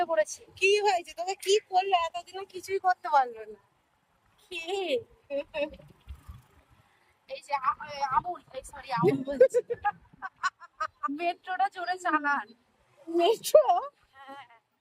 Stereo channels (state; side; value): identical; both; correlation 1.00